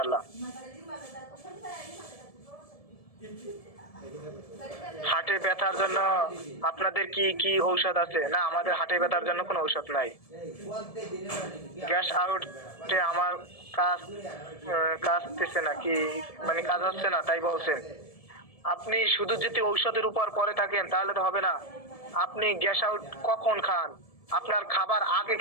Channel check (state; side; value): late; right; 1.7 ms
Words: হাটে ব্যথার জন্য আপনাদের কি কি ঔষধ আছে? না আমাদের হাটে ব্যথার জন্য কোনো ঔষধ নাই। গ্যাস আউটে আমার কাজতেছে না কি, মানে কাজ হচ্ছে না তাই বলছেন? আপনি শুধু যদি ঔষধের উপর পড়ে থাকেন তাহলে তো হবে না। আপনি গ্যাস আউট কখন খান? আপনার খাবার আগে